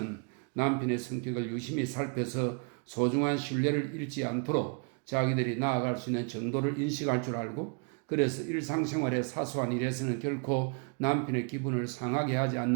남편의 성격을 유심히 살펴서 소중한 신뢰를 잃지 않도록 자기들이 나아갈 수 있는 정도를 인식할 줄 알고, 그래서 일상생활의 사소한 일에서는 결코 남편의 기분을 상하게 하지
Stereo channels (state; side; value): quieter; left; 35.3 dB